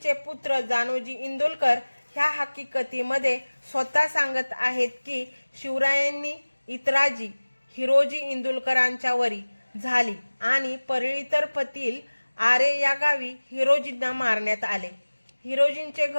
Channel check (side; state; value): both; inverted; correlation -1.00